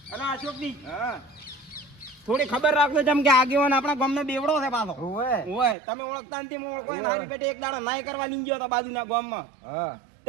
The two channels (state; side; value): drops out; left; at 5.8 s